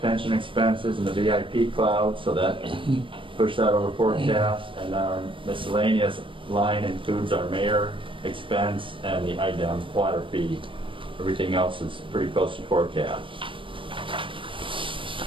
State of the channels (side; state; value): left; late; 0.25 ms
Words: expenses, and the VIP cloud, so that pushed that over forecast. And our miscellaneous line includes our mayor expense and the IDEM water fee. Everything else is pretty close to forecast.